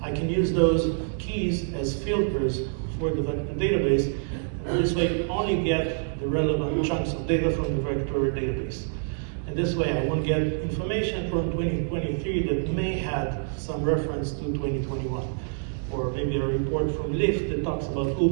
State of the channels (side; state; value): left; silent; digital silence